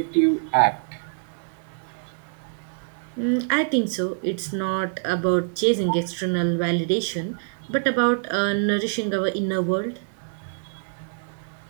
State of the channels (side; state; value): left; silent; 62 dB below the other